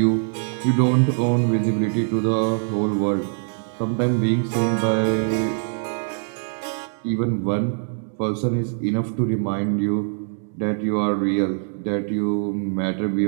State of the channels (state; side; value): silent; left; digital silence